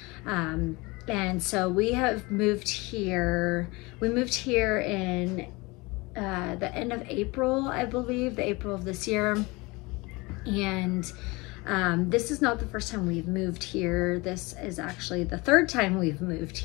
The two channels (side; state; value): right; quieter; 24.4 dB